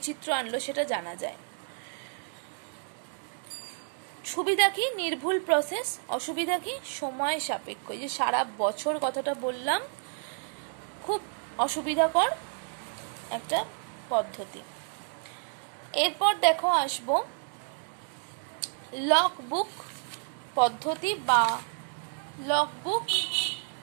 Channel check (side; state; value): left; silent; 58 dB below the other